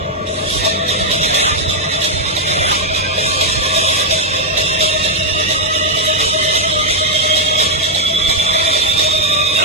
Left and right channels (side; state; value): both; normal; correlation -0.02